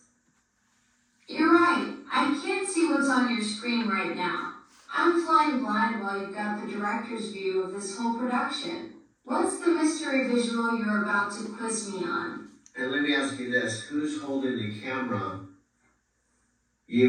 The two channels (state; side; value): identical; both; correlation 1.00